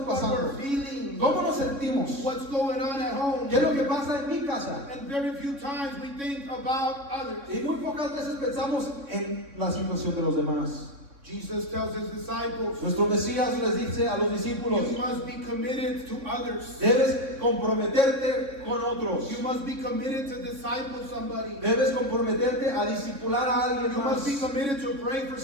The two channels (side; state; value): left; late; 3.6 ms